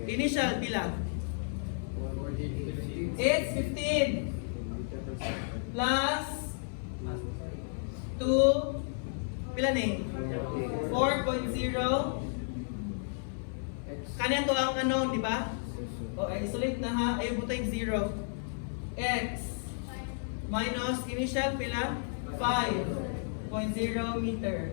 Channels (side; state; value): right; silent; 56 dB below the other